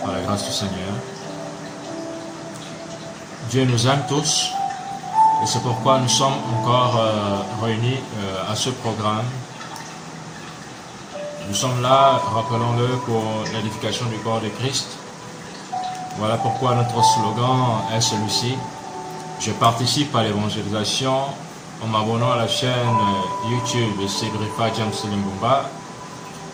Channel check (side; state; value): both; identical; correlation 1.00